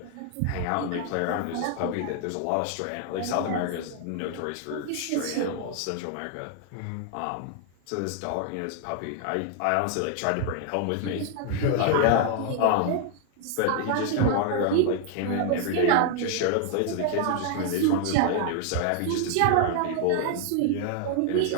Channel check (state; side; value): different; both; correlation 0.00